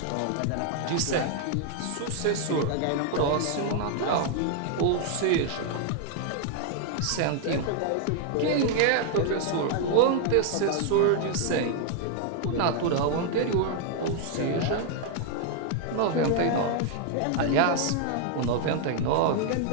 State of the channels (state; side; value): different; both; correlation 0.00